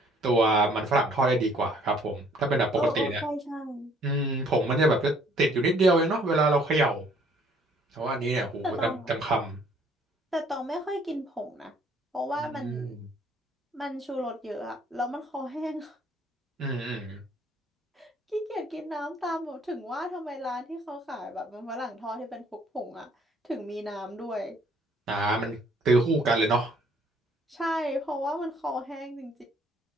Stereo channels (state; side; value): normal; both; correlation 0.61